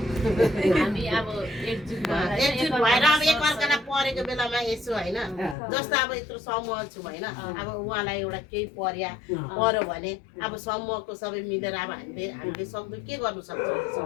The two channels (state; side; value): drops out; right; at 5.6 s